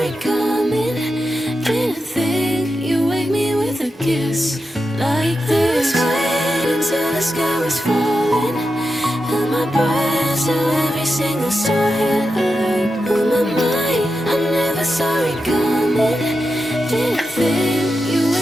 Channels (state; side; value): normal; both; correlation 0.89